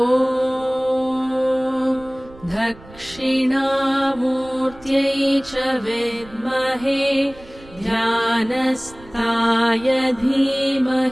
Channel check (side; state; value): right; noise; rumble, 22 dB below the sound